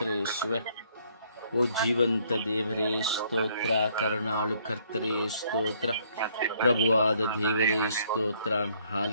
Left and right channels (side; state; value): both; inverted; correlation -0.66